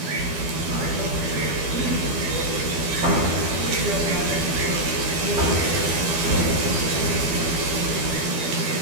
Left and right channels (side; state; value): left; late; 12 ms